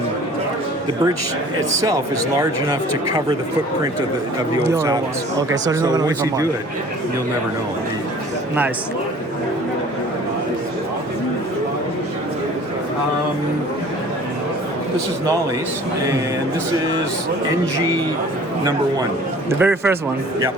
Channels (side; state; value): both; normal; correlation 0.48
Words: the bridge itself is large enough to cover the footprint of the old saddles. Okay, so once you do it, you'll never know. Nice. This is Nolly's, and this is NG #1. The very first one. Yep.